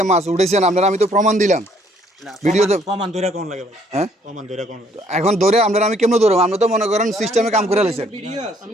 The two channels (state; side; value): normal; both; correlation 0.65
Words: মাছ উঠেছেন, আপনার আমি তো প্রমাণ দিলাম ভিডিও ভিডিওতে। প্রমাণ ধরে কোন লাগে ভাই? হ্যাঁ প্রমাণ ধরে কোন লাগে? এখন ধরে আপনার আমি কেমনে ধরবো? আমরা তো মনে করেন সিস্টেমে কাম করে লাইছেন।